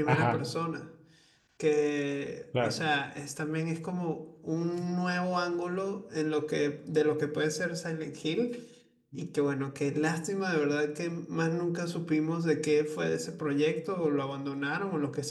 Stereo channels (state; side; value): identical; both; correlation 1.00